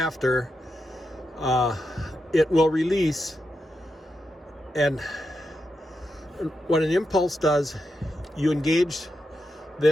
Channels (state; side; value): normal; both; correlation 0.86